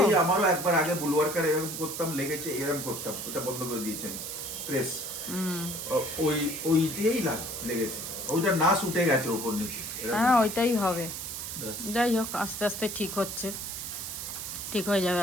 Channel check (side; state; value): right; noise; hiss, 6 dB below the sound